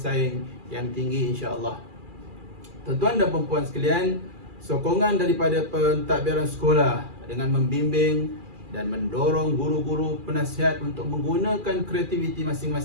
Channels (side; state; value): left; late; 2.4 ms